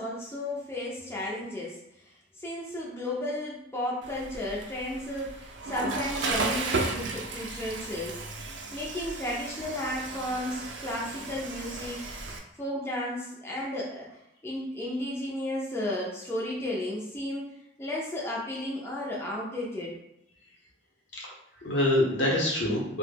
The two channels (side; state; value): both; normal; correlation 0.37